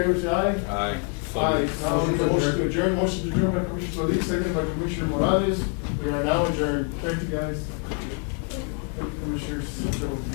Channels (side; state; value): right; quieter; 38.4 dB